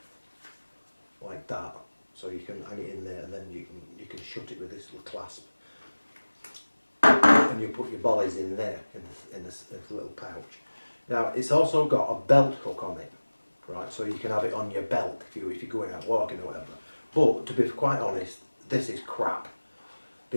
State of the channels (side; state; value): both; inverted; correlation -1.00